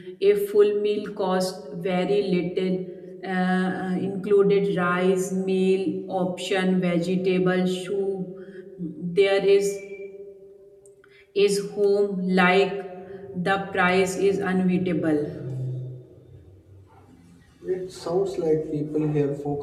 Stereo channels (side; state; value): both; identical; correlation 1.00